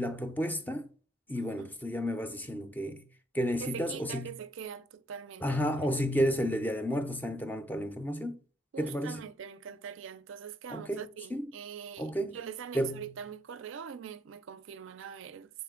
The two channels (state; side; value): normal; both; correlation 0.73